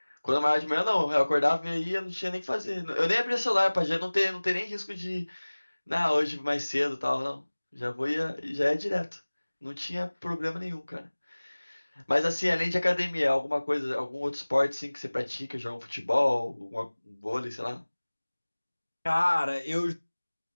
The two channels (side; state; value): both; inverted; correlation -1.00